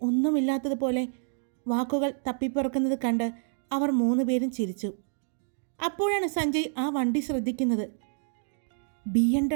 ഒന്നുമില്ലാത്തതുപോലെ വാക്കുകൾ തപ്പിപ്പുറക്കുന്നത് കണ്ട് അവർ 3 പേരും ചിരിച്ചു. അപ്പോഴാണ് സഞ്ജയ് ആ വണ്ടി ശ്രദ്ധിക്കുന്നത്.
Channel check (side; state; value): left; silent; digital silence